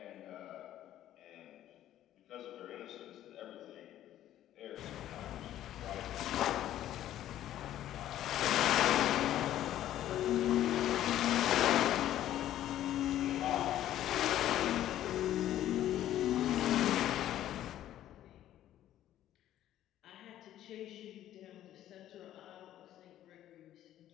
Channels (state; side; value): quieter; right; 12.5 dB